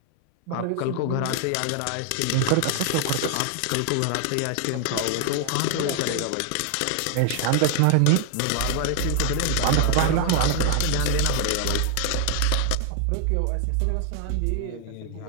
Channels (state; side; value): different; both; correlation 0.00